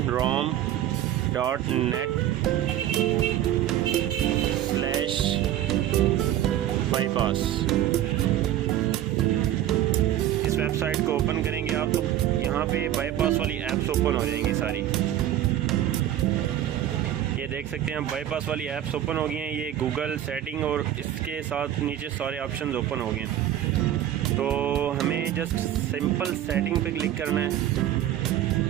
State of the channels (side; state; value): left; quieter; 12.0 dB